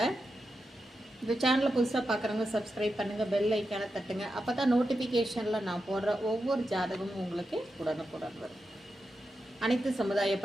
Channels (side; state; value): both; normal; correlation 0.88